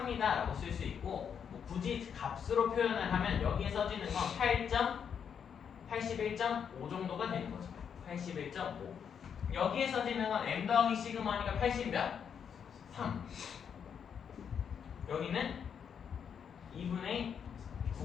라고 쓸 수 있고, 뭐 굳이 값으로 표현을 하면 여기에 써지는 건 81.5 정도가 되는 거죠. 81.5. 여기에 써지는 건 m 더하기 시그마니까 80 몇? 3. 여기는 2분의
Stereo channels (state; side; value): quieter; right; 7.5 dB